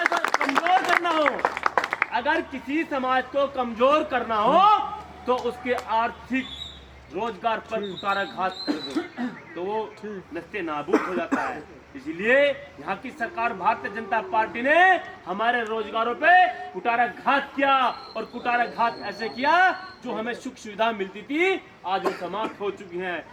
कमजोर करना हो, अगर किसी समाज को कमजोर करना हो तो उसके आर्थिक रोजगार पर कुठाराघात कर दो तो वो नस्ते नाबूद हो जाता है। इसलिए यहाँ की सरकार भारतीय जनता पार्टी ने हमारे रोजगारों पे कुठाराघात किया और कुठाराघात ऐसे किया जो हमें सुख सुविधा मिलती थी आज वो समाप्त हो चुकी हैं।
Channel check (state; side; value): identical; both; correlation 1.00